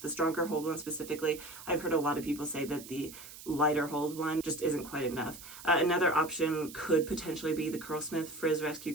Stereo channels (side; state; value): right; noise; hiss, 15 dB below the sound